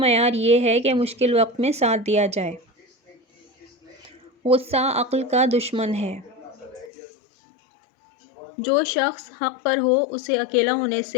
یہ ہے کہ مشکل وقت میں ساتھ دیا جائے۔ غصہ عقل کا دشمن ہے۔ جو شخص حق پر ہو اسے اکیلا ہونے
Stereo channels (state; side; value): drops out; right; at 6.9 s